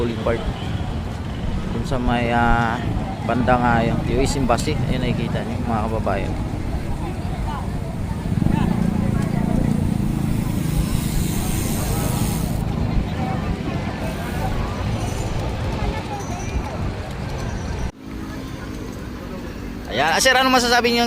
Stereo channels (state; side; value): identical; both; correlation 1.00